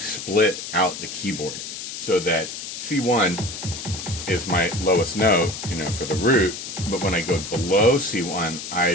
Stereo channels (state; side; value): noise; left; hiss, 8 dB below the sound